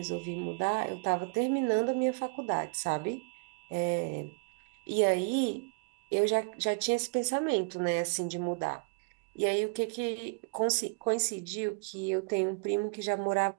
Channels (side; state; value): left; quieter; 34.4 dB